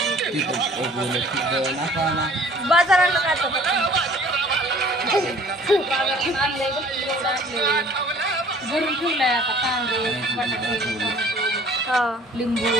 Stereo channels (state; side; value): normal; both; correlation 0.52